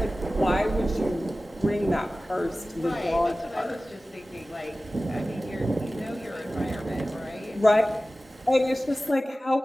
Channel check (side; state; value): both; normal; correlation 0.96